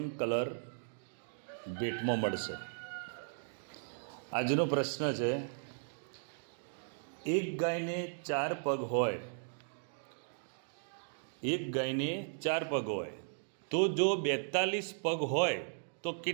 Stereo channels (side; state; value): left; silent; digital silence